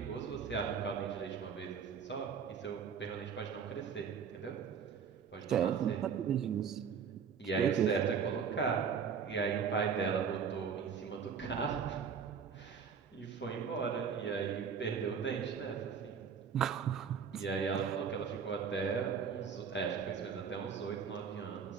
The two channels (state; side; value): quieter; left; 6.7 dB